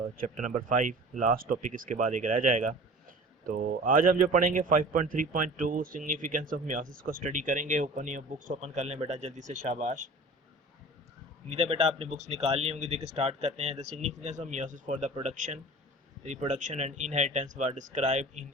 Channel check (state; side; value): normal; both; correlation 0.41